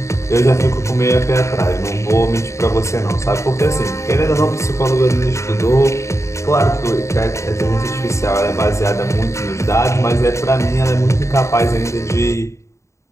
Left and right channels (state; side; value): late; right; 0.14 ms